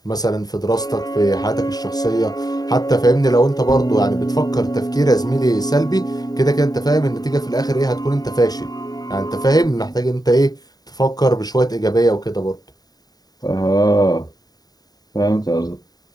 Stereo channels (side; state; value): right; late; 0.19 ms